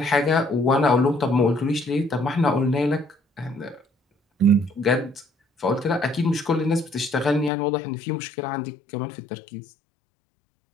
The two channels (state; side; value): drops out; right; at 7.5 s